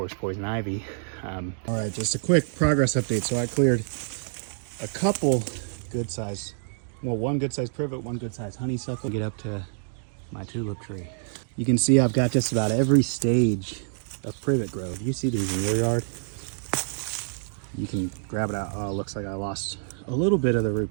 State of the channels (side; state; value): left; silent; digital silence